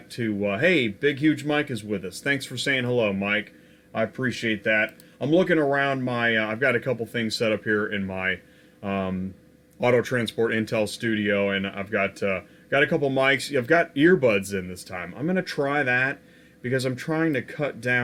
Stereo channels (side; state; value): both; identical; correlation 1.00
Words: to, hey, Big Huge Mike is with us. Thanks for saying hello, Mike. I appreciate that. I'm looking around my, I've got a couple things set up here in my Auto Transport Intel studio, and I've got a couple mics. I've got earbuds in this time. I'm going to try that because I'm trying to cut